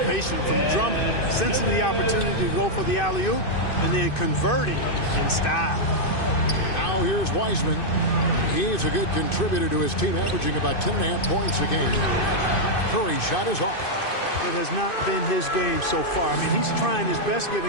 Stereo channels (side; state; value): right; late; 2.5 ms